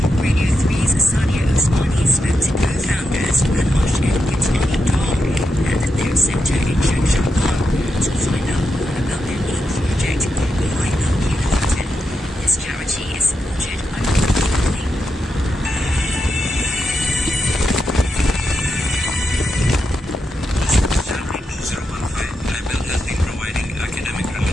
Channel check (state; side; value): normal; both; correlation 0.85